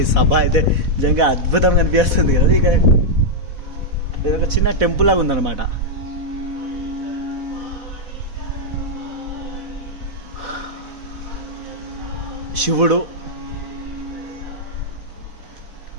ఈ సభ అయితే నిజంగా అద్భుతంగా అనిపిస్తుంది కదా. ఇక ఇదొక చిన్న టెంపుల్ లాగా ఉందన్నమాట. శివుడు,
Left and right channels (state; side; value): late; left; 4.1 ms